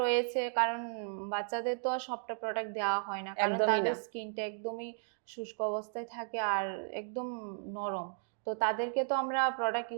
রয়েছে, কারণ বাচ্চাদের তো আর সবটা প্রোডাক্ট দেওয়া হয় না, কারণ একদমই তাদের না। স্কিনটা একদমই শুষ্ক অবস্থায় থাকে আর একদম নরম। তো তাদেরকে তো আমরা প্রোডাক্ট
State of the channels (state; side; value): silent; left; digital silence